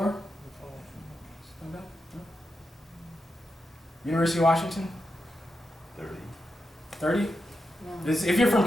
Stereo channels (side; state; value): both; normal; correlation 0.87